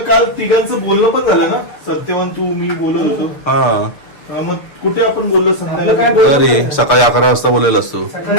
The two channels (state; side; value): late; right; 6.8 ms